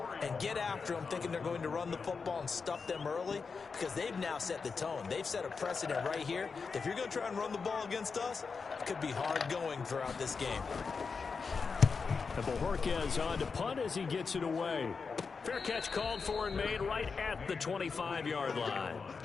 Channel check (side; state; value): right; quieter; 5.1 dB